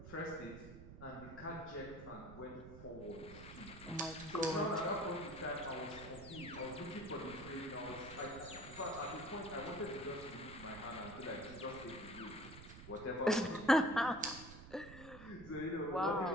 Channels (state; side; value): noise; right; rumble, 14 dB below the sound